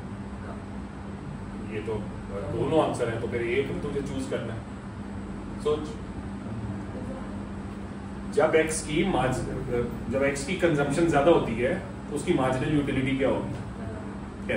ये तो दोनों आंसर है, तो फिर एक तुझे चूज करना है। सोच, जब एक्स की कंजम्पशन ज्यादा होती है तो उसकी मार्जिनल यूटिलिटी क्या होगी?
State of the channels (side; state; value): both; identical; correlation 1.00